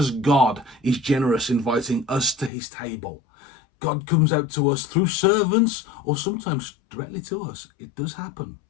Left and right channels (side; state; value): right; drops out; at 2.5 s